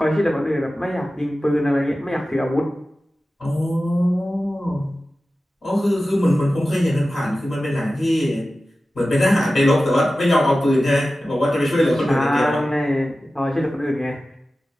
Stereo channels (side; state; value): both; normal; correlation 0.95